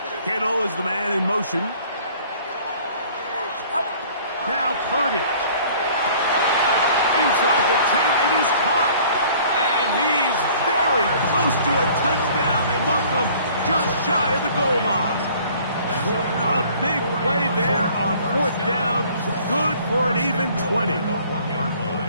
Kittle is the man in motion. Now Purdy. Inside the 10, it is caught. And he's very close to a touchdown. They mark him just shy of the goal line. A big play there on 4th down. Good for an even 20.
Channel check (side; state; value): both; inverted; correlation -0.53